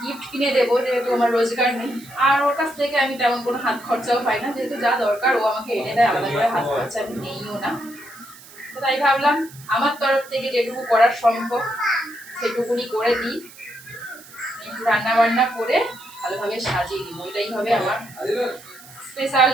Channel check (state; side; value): noise; right; hiss, 20 dB below the sound